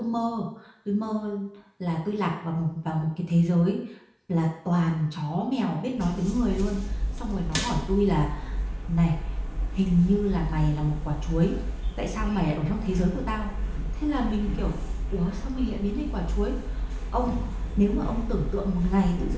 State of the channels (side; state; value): both; identical; correlation 1.00